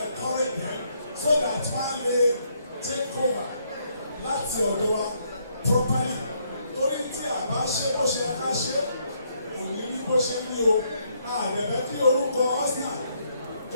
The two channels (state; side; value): inverted; both; correlation -0.73